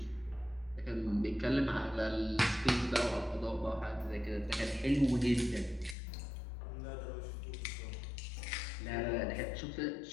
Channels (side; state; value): right; drops out; at 6.0 s